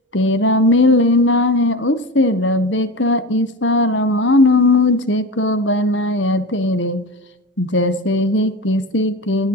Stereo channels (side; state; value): both; normal; correlation 0.27